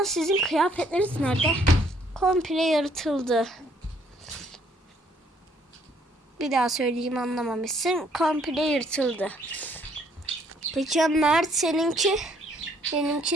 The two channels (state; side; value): normal; both; correlation 0.65